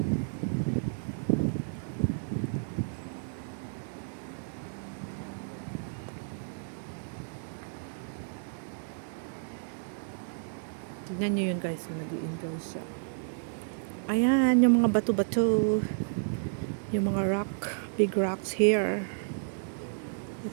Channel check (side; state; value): left; silent; digital silence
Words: Tignan nyo yun guys, nag-i-enjoy siya. Ayan, yung mga bato-bato. Yung mga rock, big rocks here. You